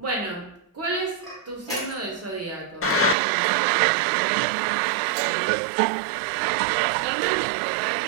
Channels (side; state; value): left; drops out; at 3.2 s